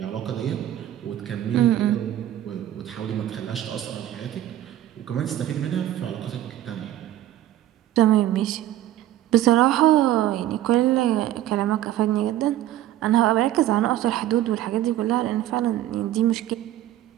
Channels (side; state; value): left; quieter; 13.2 dB